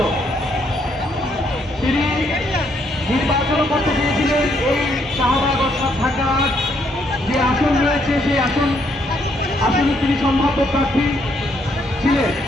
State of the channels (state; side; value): normal; both; correlation 0.72